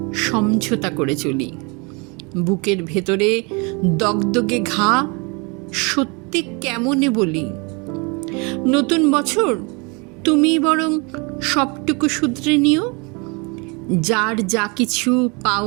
সমঝোতা করে চলি, বুকের ভেতরে দগদগে ঘা, সত্যি কেমনে বলি। নতুন বছর তুমি বরং সবটুকু শুধরে নিও, যার যা কিছু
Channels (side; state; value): left; quieter; 30.5 dB